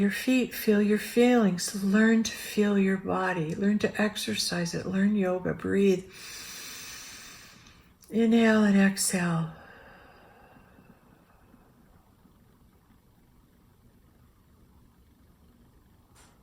feet, feel your feelings. Learn to feel your body. Learn to exercise it. Learn yoga. Breathe. Inhale and exhale.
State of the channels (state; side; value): identical; both; correlation 1.00